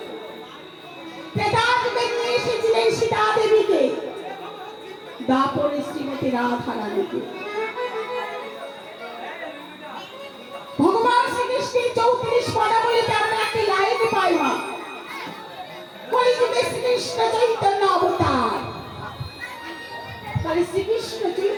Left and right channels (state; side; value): identical; both; correlation 1.00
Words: ত্রেতা যুগে নিয়ে এসেছিলেন সীতা দেবীকে, দ্বাপরে শ্রীমতী রাধা রানীকে। ভগবান শ্রীকৃষ্ণের 34 পদাবলীতে আমরা একটি লাইন পাই না, কলিযুগে শ্রীকৃষ্ণ চৈতন্য অবতার। তাহলে শ্রীকৃষ্ণ